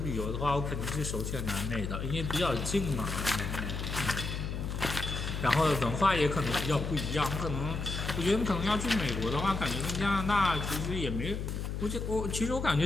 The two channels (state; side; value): noise; left; hum, 4 dB below the sound